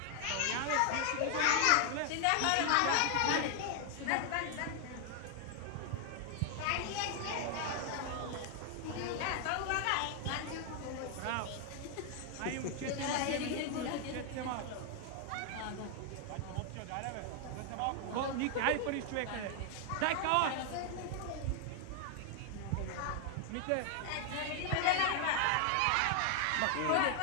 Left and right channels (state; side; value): different; both; correlation 0.00